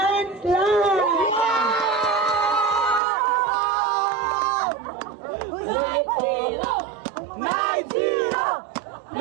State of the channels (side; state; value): left; drops out; at 3.0 s